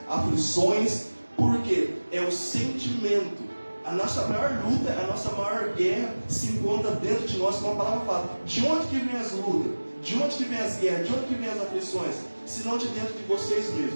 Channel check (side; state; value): both; inverted; correlation -1.00